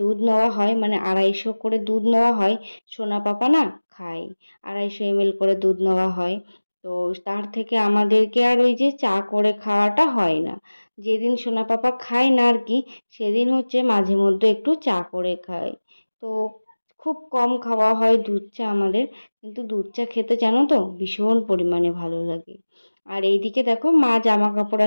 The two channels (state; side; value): inverted; both; correlation -1.00